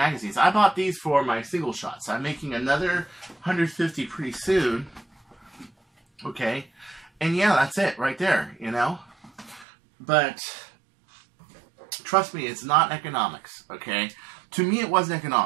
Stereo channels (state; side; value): drops out; left; at 9.7 s